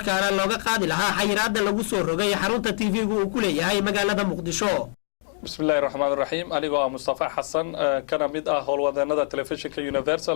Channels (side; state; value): right; silent; digital silence